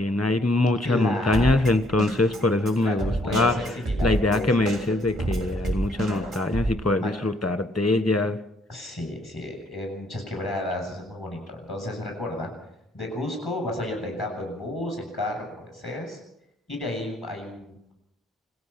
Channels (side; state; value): both; normal; correlation 0.67